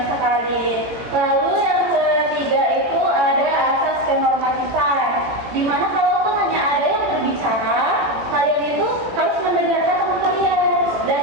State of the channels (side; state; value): left; late; 18 ms